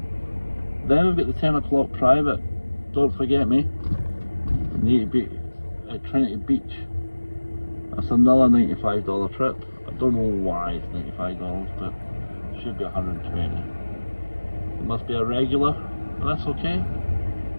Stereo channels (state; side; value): inverted; both; correlation -1.00